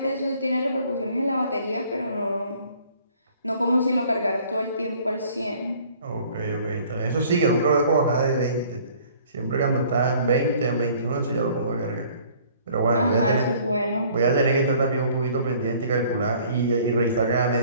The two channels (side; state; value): both; inverted; correlation -0.55